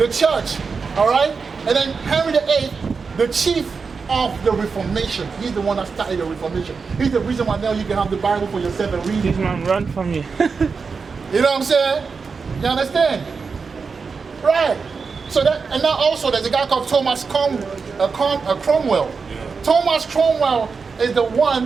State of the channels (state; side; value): quieter; left; 5.1 dB